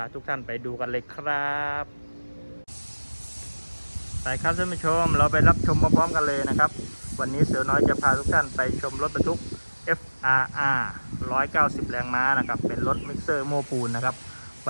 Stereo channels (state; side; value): inverted; both; correlation -1.00